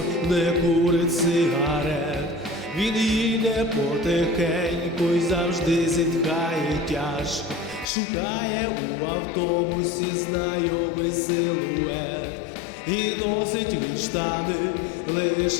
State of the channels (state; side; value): drops out; right; at 7.9 s